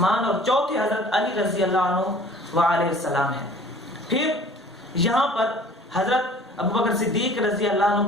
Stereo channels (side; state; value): both; normal; correlation 0.49